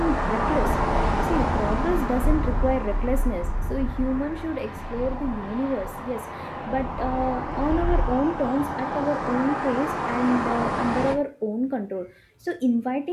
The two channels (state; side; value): identical; both; correlation 1.00